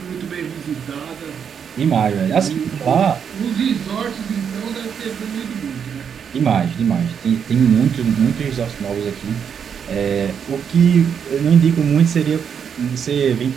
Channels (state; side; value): quieter; left; 7.4 dB